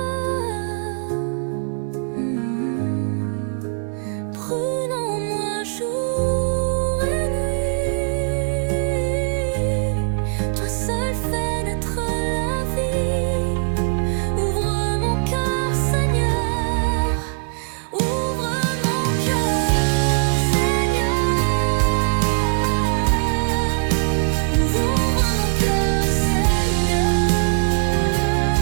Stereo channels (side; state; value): left; silent; 65 dB below the other